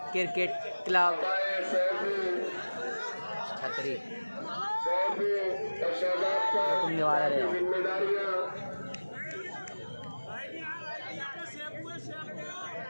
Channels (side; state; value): both; inverted; correlation -1.00